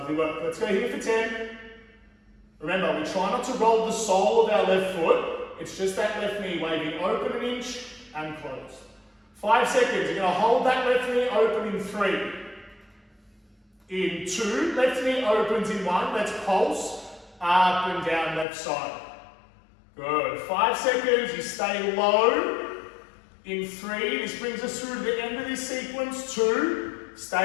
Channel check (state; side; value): drops out; right; at 18.4 s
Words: work. Let's go here for 10. Remember, we try not to roll the sole of our left foot. It's just that left knee waving open an inch and close. 5 seconds. You're going to hold that left knee open in 3. In 2, left knee opens in 1. Let's pulse up and down left side. Good. 5 seconds. You stay low. In 3, this brings us through to the end of this sequence. 2,